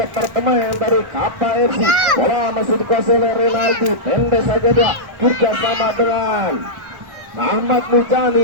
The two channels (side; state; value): left; late; 1.4 ms